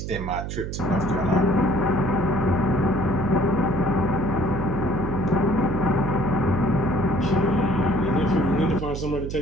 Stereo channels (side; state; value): right; noise; hum, 6 dB below the sound